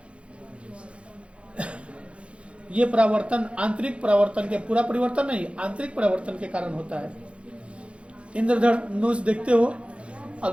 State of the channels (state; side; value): late; left; 0.060 ms